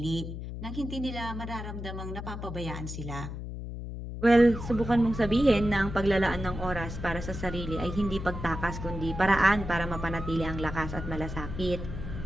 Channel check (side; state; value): left; noise; hum, 7 dB below the sound